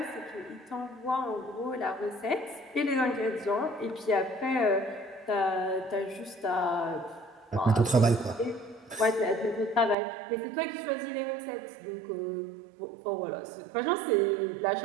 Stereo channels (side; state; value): left; drops out; at 10.0 s